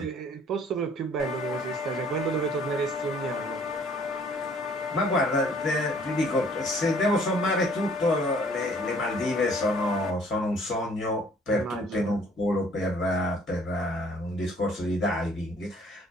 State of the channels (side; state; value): both; normal; correlation 0.58